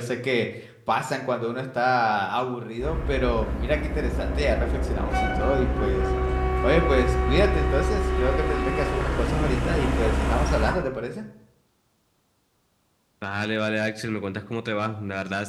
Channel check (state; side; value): identical; both; correlation 1.00